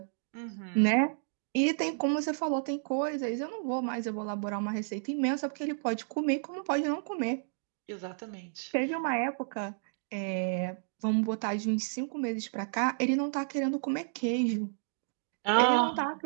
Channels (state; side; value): silent; left; digital silence